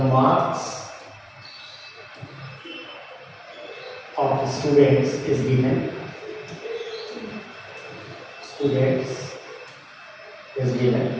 of students is given. Students is given.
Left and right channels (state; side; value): identical; both; correlation 1.00